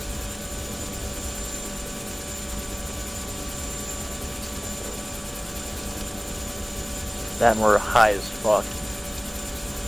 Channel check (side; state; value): both; identical; correlation 1.00